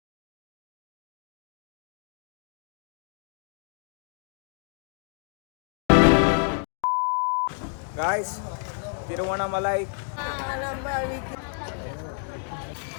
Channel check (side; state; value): right; silent; 59 dB below the other